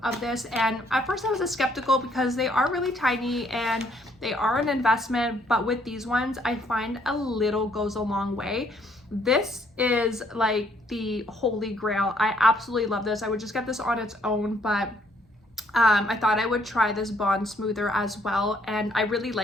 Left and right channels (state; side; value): normal; both; correlation 0.67